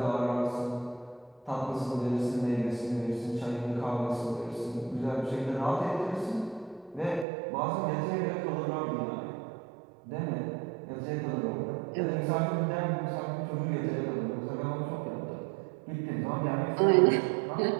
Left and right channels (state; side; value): drops out; left; at 7.2 s